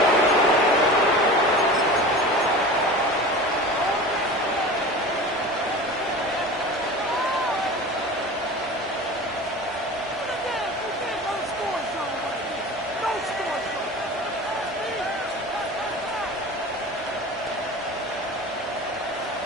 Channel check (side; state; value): both; normal; correlation 0.35